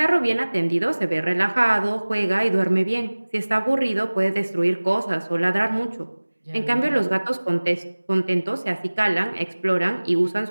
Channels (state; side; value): inverted; both; correlation -1.00